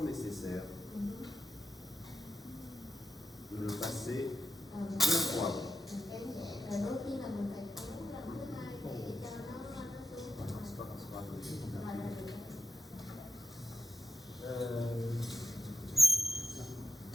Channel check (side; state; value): both; normal; correlation 0.89